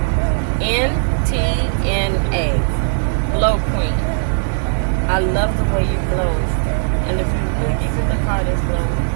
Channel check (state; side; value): silent; left; digital silence